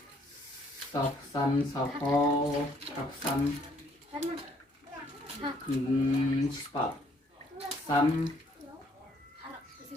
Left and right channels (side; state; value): both; normal; correlation 0.65